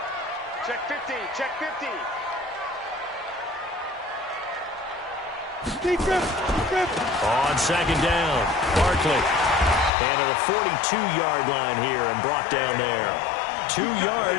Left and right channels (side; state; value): right; drops out; at 9.9 s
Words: Check 15. Check 15. On 2nd down, Barkley. And to the 42-yard line here and brought down there. 2